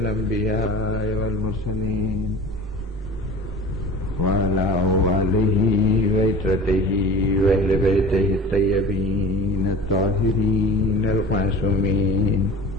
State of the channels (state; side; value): normal; both; correlation 0.40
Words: والمرسلين وعلى آله وعترته وأهل بيته الطيبين الطاهرين المعصومين